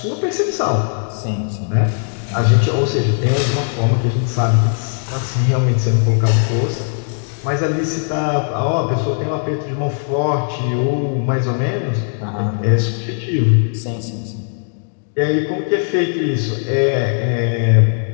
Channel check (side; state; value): right; silent; digital silence